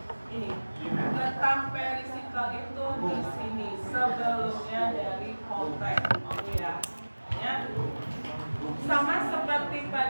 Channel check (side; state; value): both; inverted; correlation -1.00